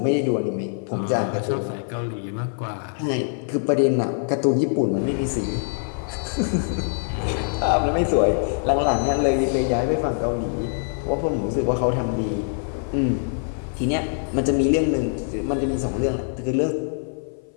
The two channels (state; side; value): silent; right; 58 dB below the other